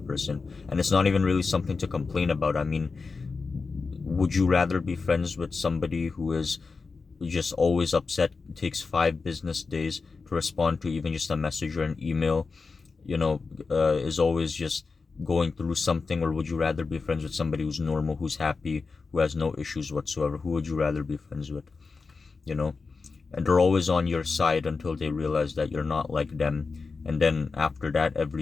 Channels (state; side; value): quieter; right; 4.5 dB